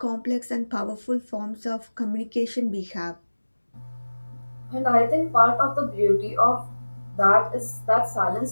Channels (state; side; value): inverted; both; correlation -1.00